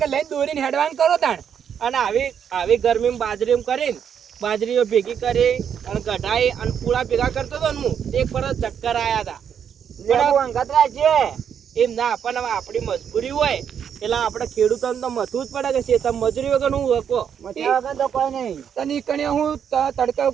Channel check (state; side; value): quieter; left; 8.1 dB